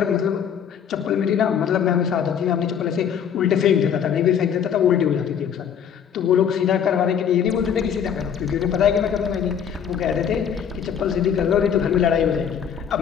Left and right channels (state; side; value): quieter; right; 8.1 dB